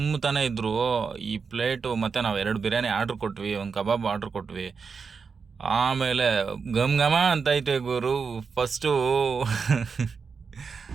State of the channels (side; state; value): left; quieter; 5.4 dB